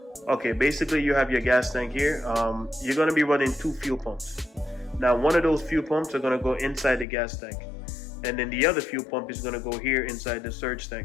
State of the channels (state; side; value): drops out; right; at 7.1 s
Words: okay, basically you have your gas tank here. You're gonna be running two fuel pumps. Now one of those fuel pumps are gonna go inside the gas tank, and then the other fuel pump is gonna go here inside the surge